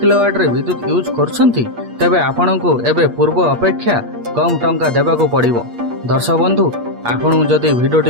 रे विद्युत यूज करछंती तेबे आपणको एबे पूर्व अपेक्षा कम टंका देबाको पड़िबो। दर्शक बंधु आपण जदि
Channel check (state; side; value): late; left; 8.5 ms